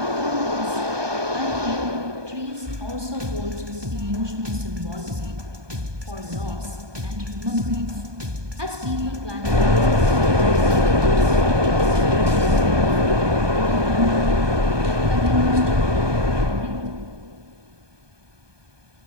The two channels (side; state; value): left; late; 1.2 ms